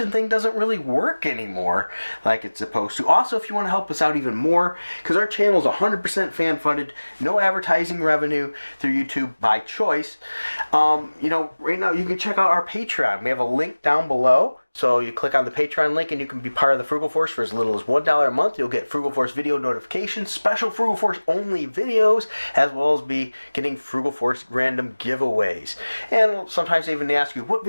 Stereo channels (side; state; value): both; inverted; correlation -1.00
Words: thing doesn't really work anymore like it's supposed to. Also, if you want to help us out even more, because our channel is 100% fan-funded, no advertising revenue through YouTube by choice, you know, right now you can check out our Patreon. We have a link down below. So you click on the Patreon link and you can be part of the Frugal Force for as little as $1 a month. You'll get Frugal Force video notifications, special Frugal Force only videos, as well as be getting Frugal Force random giveaways. And sometimes they even ask you, what